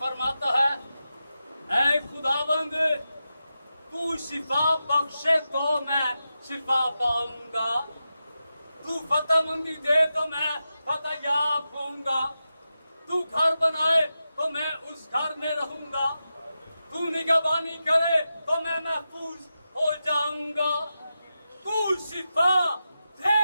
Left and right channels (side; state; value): both; inverted; correlation -0.90